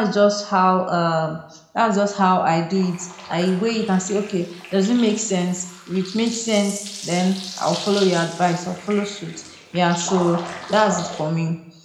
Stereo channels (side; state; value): both; identical; correlation 1.00